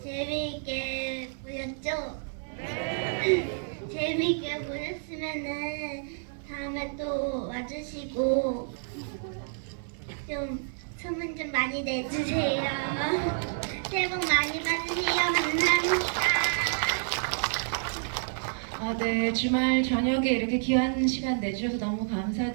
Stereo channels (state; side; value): silent; left; digital silence